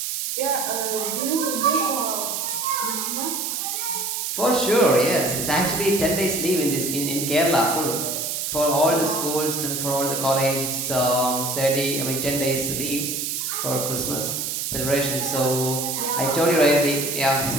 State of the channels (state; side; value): noise; right; hiss, 2 dB below the sound